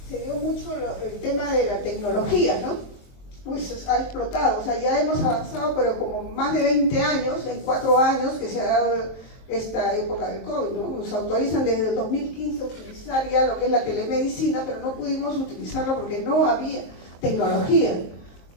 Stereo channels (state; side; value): late; right; 22 ms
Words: se dio mucho el tema de la tecnología, ¿no? Pues ha explotado, o sea, ya hemos avanzado, pero como más de 20 años, en 4 años que se ha dado esta época del COVID, ¿no? Nos autorizan desde el 2015 a utilizar ya lo que es la telemedicina, pero no pudimos utilizarla porque no había tecnología.